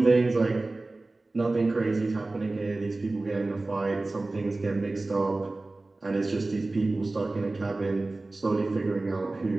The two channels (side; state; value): left; quieter; 3.1 dB